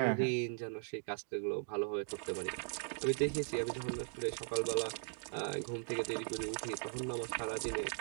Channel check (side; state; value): left; silent; 52 dB below the other